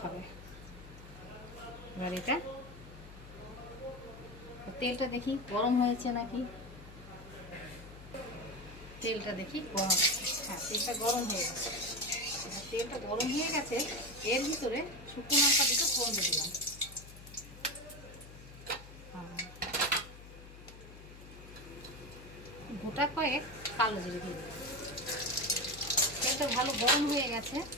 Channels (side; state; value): left; noise; hum, 16 dB below the sound